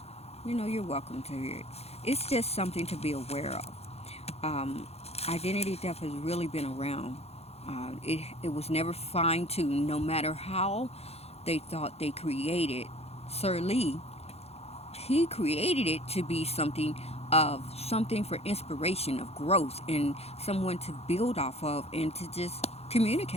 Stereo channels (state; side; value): late; right; 0.30 ms